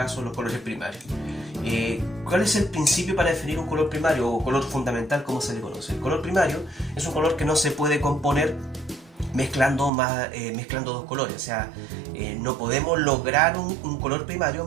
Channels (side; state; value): left; drops out; at 9.9 s